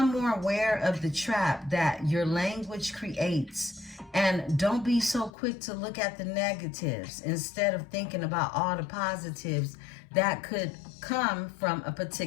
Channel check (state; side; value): drops out; right; at 5.3 s